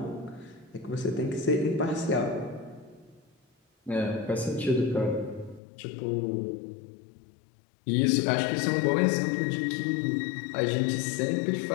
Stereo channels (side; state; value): right; drops out; at 5.6 s